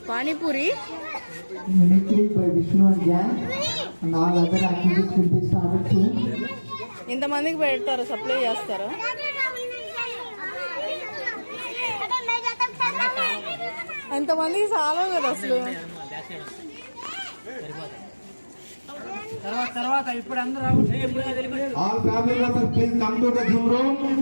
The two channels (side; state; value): both; inverted; correlation -1.00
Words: Panipuri Mimicry by Vishnu and gang and all other activities will be started soon. ఇంతమందికి పెడతారు, supply చేస్తారు. అంతమందికి చాలా కదా అసలు. All family members, please come to the Zoom room.